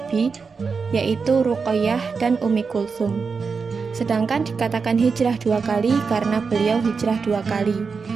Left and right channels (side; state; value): left; quieter; 5.1 dB